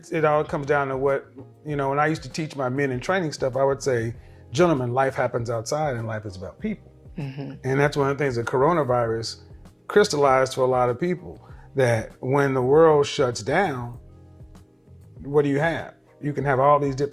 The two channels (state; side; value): identical; both; correlation 1.00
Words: all comes down to what When I used to teach my men in training stuff, I would say, "Gentlemen, life happens outside, and life is about people." Mm-hmm. And that's one of the things. The coronavirus crystallized for a lot of people that when the world shuts down, what do you have? You can have all these